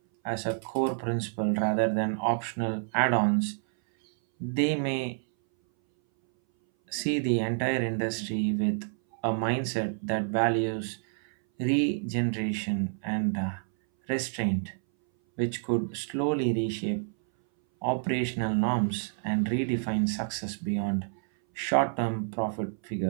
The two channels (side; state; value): left; silent; 59 dB below the other